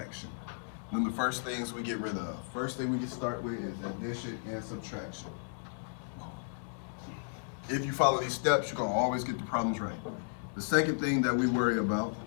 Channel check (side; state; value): right; silent; digital silence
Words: Then the first things we get rid of. First thing we can start with is addition and subtraction. If you follow these steps, you're going to always get the problems right. The second thing that we worry about